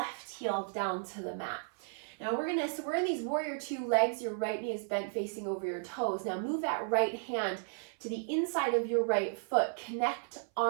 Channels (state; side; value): silent; left; 55 dB below the other